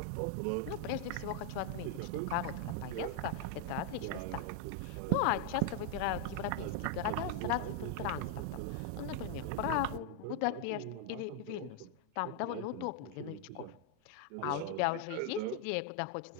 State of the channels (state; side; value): different; both; correlation 0.00